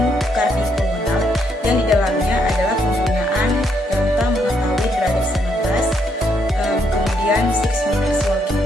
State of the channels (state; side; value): normal; both; correlation 0.74